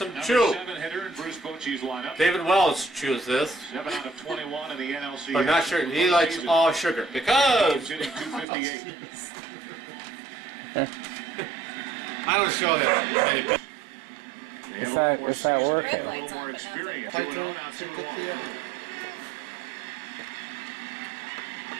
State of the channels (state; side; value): drops out; left; at 8.5 s